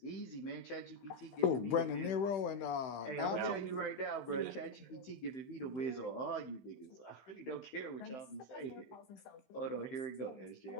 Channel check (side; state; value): right; late; 15 ms